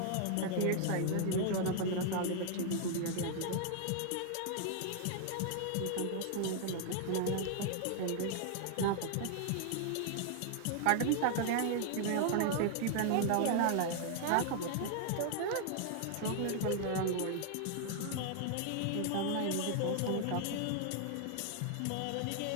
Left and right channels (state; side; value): different; both; correlation 0.00